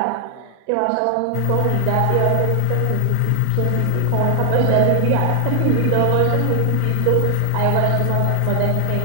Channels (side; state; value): both; different; correlation 0.00